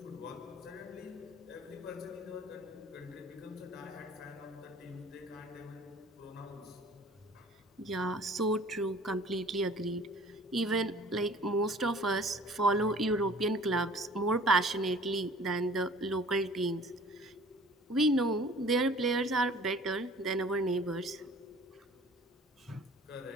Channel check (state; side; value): normal; both; correlation 0.49